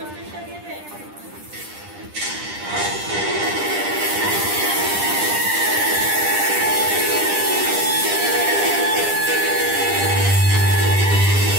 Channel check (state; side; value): late; left; 10 ms